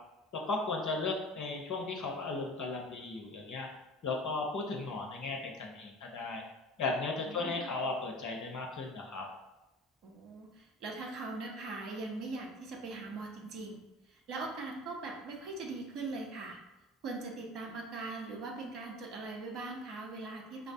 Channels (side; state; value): both; normal; correlation 0.38